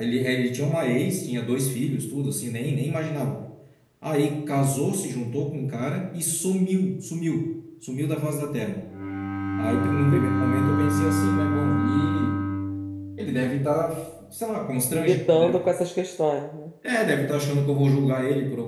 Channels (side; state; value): both; identical; correlation 1.00